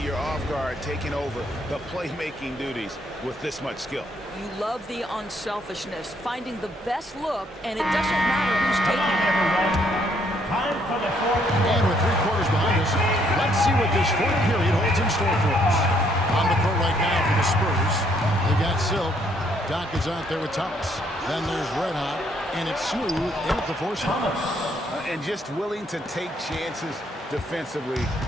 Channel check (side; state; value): both; normal; correlation 0.69